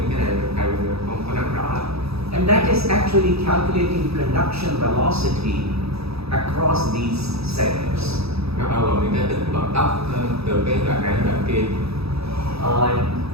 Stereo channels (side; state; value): left; late; 0.78 ms